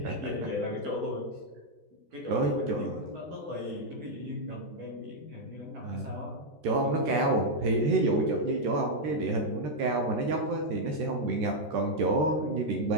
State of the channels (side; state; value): left; late; 13 ms